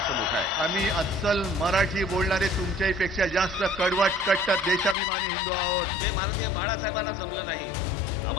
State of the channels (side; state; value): right; drops out; at 5.0 s